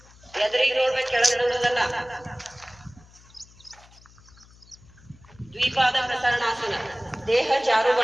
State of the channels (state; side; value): noise; left; hum, 25 dB below the sound